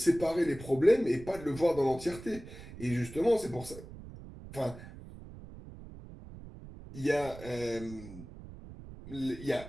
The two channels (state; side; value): noise; right; rumble, 15 dB below the sound